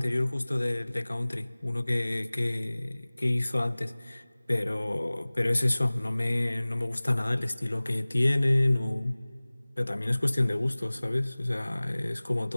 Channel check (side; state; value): both; inverted; correlation -1.00